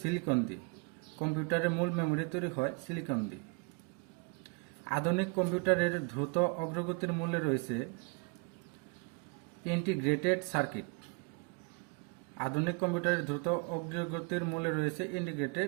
দিয়ে। কম্পিউটারের মূল মেমোরি তৈরি হয় সিলিকন দিয়ে। আধুনিক কম্পিউটারের দ্রুত অগ্রগতির মূলে রয়েছে ইন্টিগ্রেটেড সার্কিট। আধুনিক কম্পিউটারের দ্রুত অগ্রগতির মূলে রয়েছে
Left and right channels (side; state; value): left; quieter; 31.8 dB